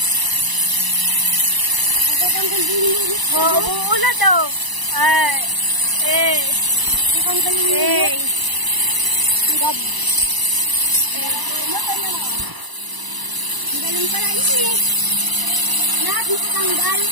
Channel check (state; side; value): late; left; 1.0 ms